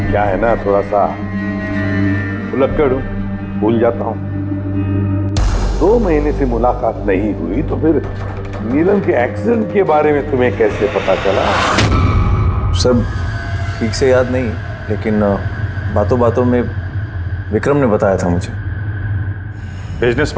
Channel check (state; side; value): identical; both; correlation 1.00